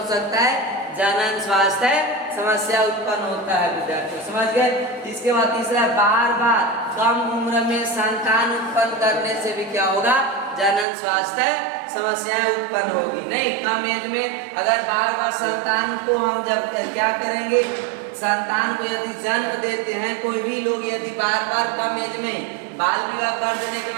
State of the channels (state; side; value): drops out; left; at 10.9 s